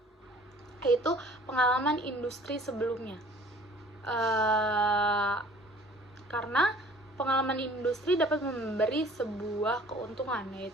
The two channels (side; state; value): both; normal; correlation 0.51